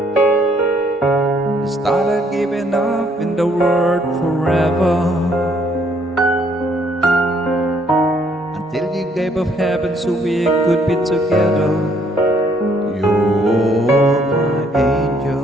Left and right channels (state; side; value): normal; both; correlation 0.67